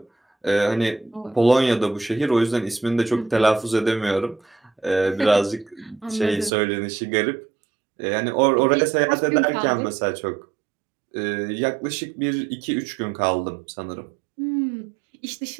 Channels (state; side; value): drops out; left; at 6.5 s